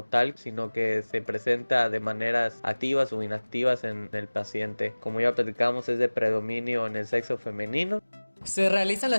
tal, sino que se presenta de maneras activas o inactivas en el paciente. Como ya platicamos, es de predominio en el sexo femenino. Se realizan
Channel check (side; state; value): both; inverted; correlation -1.00